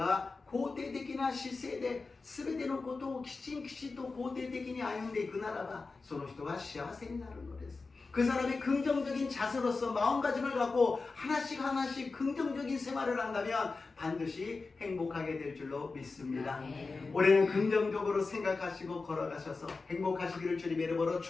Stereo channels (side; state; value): right; quieter; 4.0 dB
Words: 肯定的な姿勢で全てのことをきちんと肯定的に歩んでいくならば、その人は幸せになるのです。 그 사람이 긍정적인 자세로서 마음가짐을 갖고 하나씩 긍정적인 생활을 한다면 반드시 행복하게 될 줄로 믿습니다. 올해는 긍정적으로 생각하시고 걸어가셔서 행복하시기를 주님의 이름으로